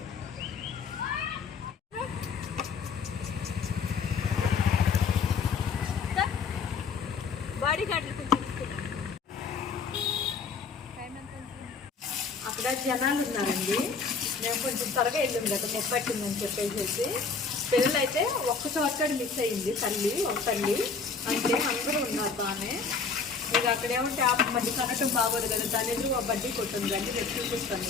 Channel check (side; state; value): right; quieter; 5.0 dB